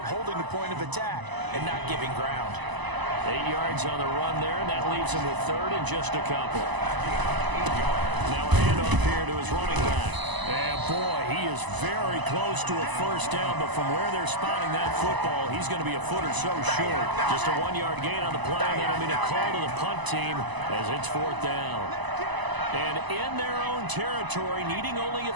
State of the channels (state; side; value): late; left; 1.0 ms